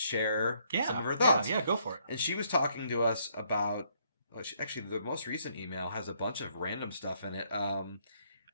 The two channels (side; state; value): both; inverted; correlation -0.70